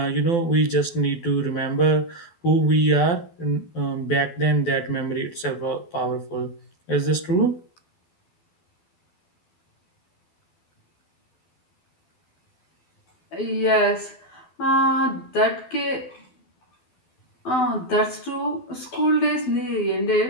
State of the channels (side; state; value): right; late; 12 ms